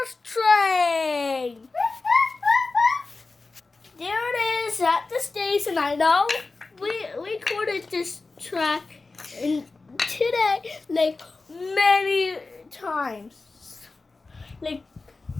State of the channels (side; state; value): right; quieter; 3.7 dB